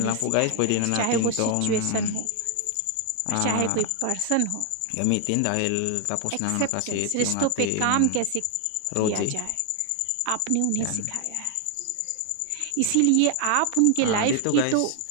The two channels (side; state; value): both; different; correlation 0.00